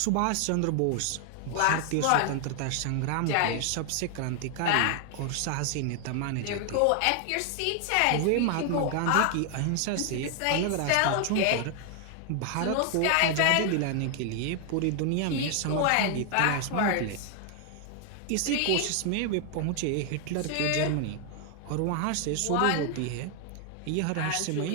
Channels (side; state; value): both; different; correlation 0.00